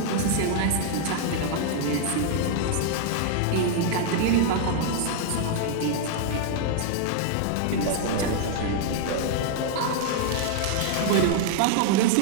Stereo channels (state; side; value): different; both; correlation 0.00